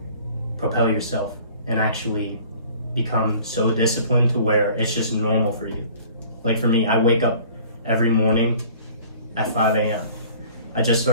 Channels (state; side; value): inverted; both; correlation -0.50